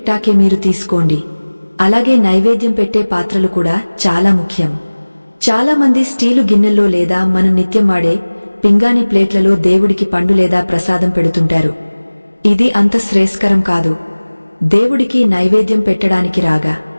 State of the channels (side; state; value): both; inverted; correlation -1.00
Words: మీరు తీసుకోండి. అలాగే నైవేద్యం పెట్టే పాత్రలు కూడా చాలా ముఖ్యం. చాలామంది స్టీలు గిన్నెల్లో లేదా మనం నిత్యం వాడే పింగాణి ప్లేట్లలో దేవుడికి పండు లేదా ప్రసాదం పెడుతుంటారు. ఇది అంత శ్రేయస్కరం కాదు. దేవుడికి నైవేద్యం పెట్టడానికి రాగా